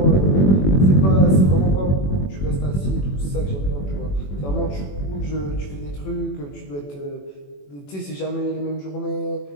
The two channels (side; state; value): right; late; 21 ms